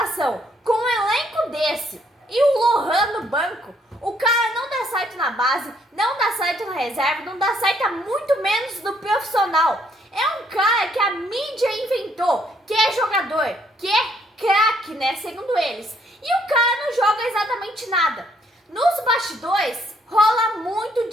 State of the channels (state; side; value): normal; both; correlation 0.68